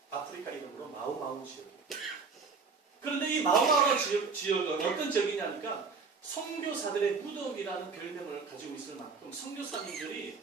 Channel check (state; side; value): quieter; left; 4.9 dB